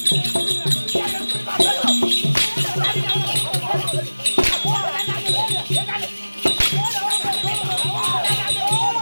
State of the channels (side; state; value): both; inverted; correlation -1.00